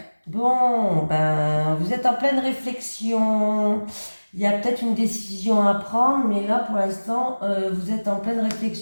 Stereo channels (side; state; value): both; inverted; correlation -1.00